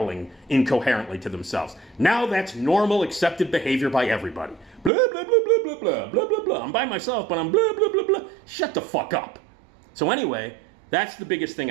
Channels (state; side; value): drops out; left; at 4.9 s